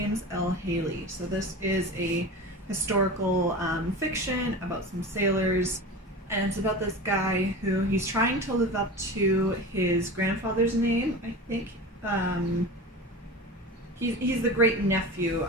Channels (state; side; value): normal; both; correlation 0.31